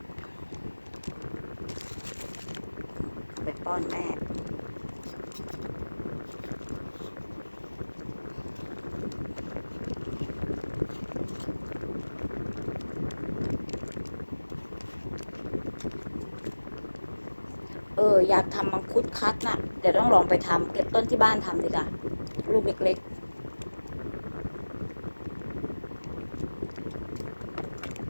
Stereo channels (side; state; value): both; inverted; correlation -1.00